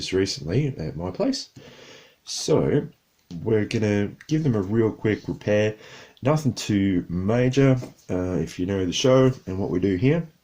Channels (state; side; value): identical; both; correlation 1.00